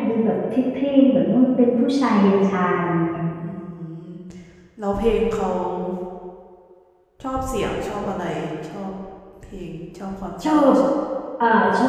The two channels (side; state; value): both; identical; correlation 1.00